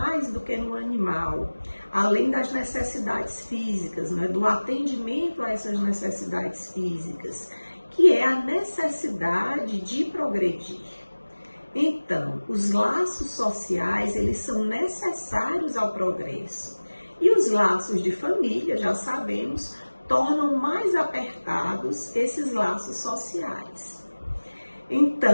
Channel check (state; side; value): inverted; both; correlation -1.00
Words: do que no animal, além das necessidades físicas, do atendimento a essas necessidades físicas, que é a necessidade de progredir. Então, os laços sociais, eles são necessários ao progresso. E os laços de família, já sabemos, tornam mais apertados esses laços sociais.